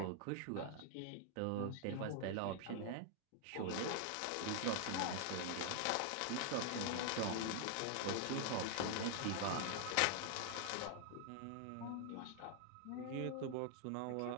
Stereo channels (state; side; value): different; both; correlation 0.00